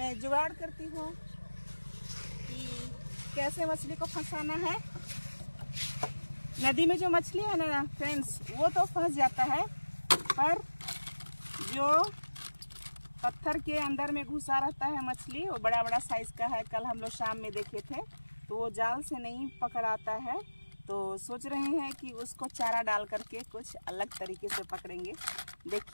जुगाड़ करती हूँ कि कैसे मछली को फंसाना है। नदी में जो मछली है ना फ्रेंड्स, वो तो फंस जाता है, पर जो पत्थर के अंदर में घुसा रहता है मछली, वो बड़ा बड़ा साइज का है। कल हम लोग शाम में देखे थे, तो वो जाल से नहीं पकड़ाता है। तो सोच रहे हैं कि उसको चारा डाल करके कुछ अलग तरीके से पकड़ेंगे।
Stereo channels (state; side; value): inverted; both; correlation -1.00